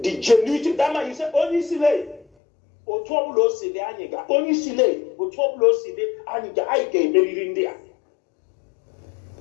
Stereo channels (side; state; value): right; drops out; at 2.2 s